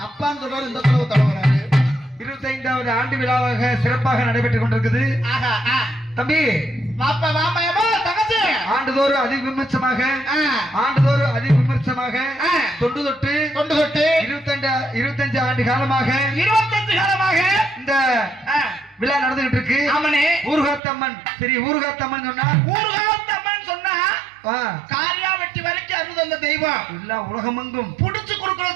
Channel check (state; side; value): drops out; left; at 20.8 s